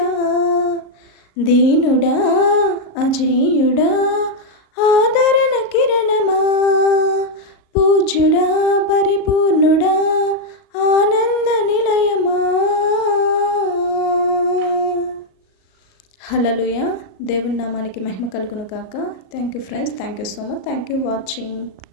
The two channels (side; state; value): right; late; 38 ms